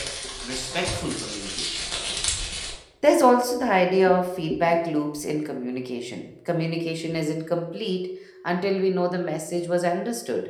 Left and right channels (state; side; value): identical; both; correlation 1.00